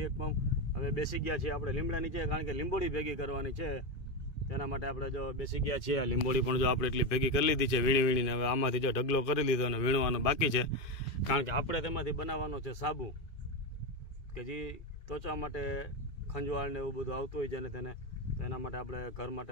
એક પંપ। હવે બેસી ગયા છીએ આપણે લીમડા નીચે, કારણ કે લીંબોડી ભેગી કરવાની છે। તેના માટે આપણે જો બેસી ગયા છીએ। આ લીંબોડી પણ જો આપણે એટલી ભેગી કરી લીધી છે વીણીને। હવે આમાંથી જો ઢગલો કરી લીધો અને વીણવાનો બાકી છે, કારણ કે આપણે તેમાંથી બનાવવાનો છે સાબુ, કે જે ત્વચા માટે ખંજવાળ ને એવું બધું આવતું હોય છે ને તેને, તો એના માટે આપણે ઘર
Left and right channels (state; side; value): late; right; 2.5 ms